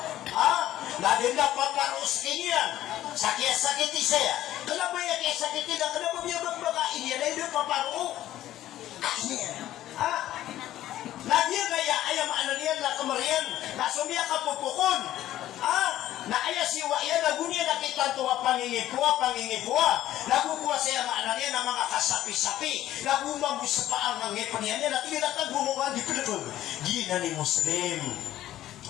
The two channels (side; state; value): right; quieter; 13.4 dB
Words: Na din dapat parus kinian. Sakit-sakiti saya. Kenapa ya kaya sakiti na? Kenapa dia berbakain niya na yung paparo? Ini na dia kaya ayam ananian na kamarian na sumia kapupukon na aya siwa yan nagunya nakita tuwa pangingipua nagukuha siya mga ananian na mga kasapi-sapi nagumang sa paang ng ngipanian niya na tinatag bumukan di pinagod gina ni muslim